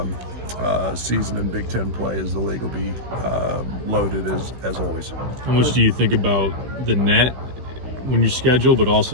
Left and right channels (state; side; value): late; left; 16 ms